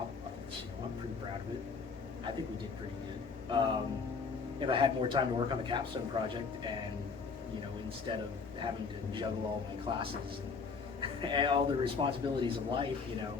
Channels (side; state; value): right; quieter; 5.1 dB